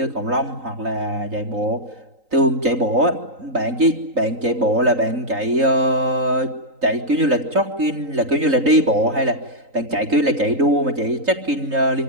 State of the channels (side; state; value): left; late; 3.9 ms